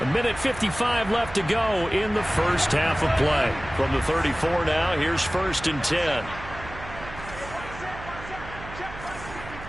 left to go in the first half of play. From the 34 now, here's 1st and 10.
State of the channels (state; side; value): noise; right; hum, 14 dB below the sound